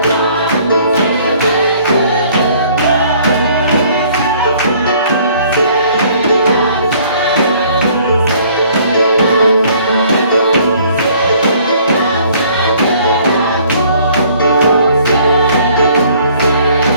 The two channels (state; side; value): inverted; both; correlation -0.58